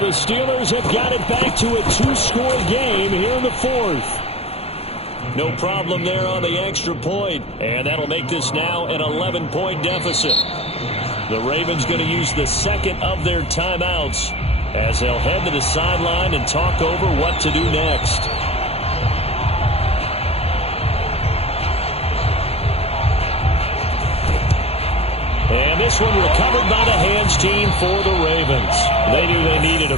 the Steelers have got it back to a 2-score game here in the fourth. No problem there on the extra point. And that'll make this now an 11-point deficit. The Ravens going to use the second of their timeouts as they'll head to the sideline and talk over what to do next. And this one recovered by the hands team for the Ravens. They knew they needed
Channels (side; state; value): right; late; 0.29 ms